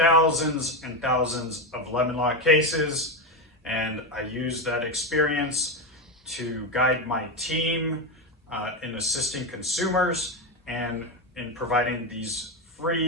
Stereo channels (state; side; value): normal; both; correlation 0.13